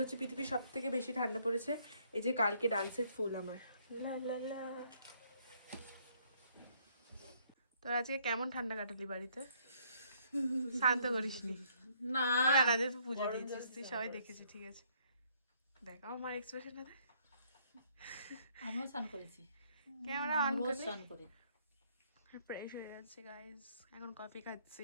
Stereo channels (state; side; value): inverted; both; correlation -0.66